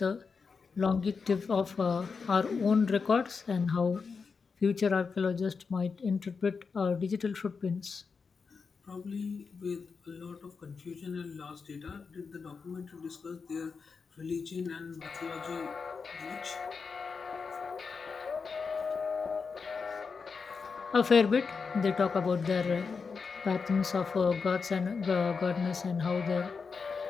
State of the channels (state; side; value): quieter; right; 5.2 dB